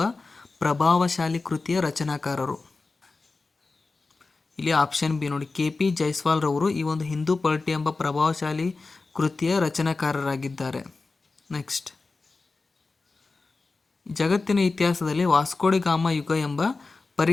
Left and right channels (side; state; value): right; quieter; 3.8 dB